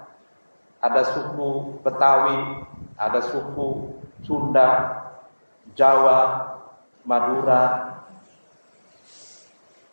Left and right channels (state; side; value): inverted; both; correlation -1.00